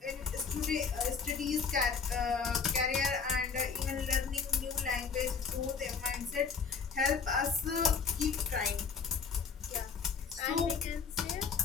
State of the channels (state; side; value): quieter; right; 5.8 dB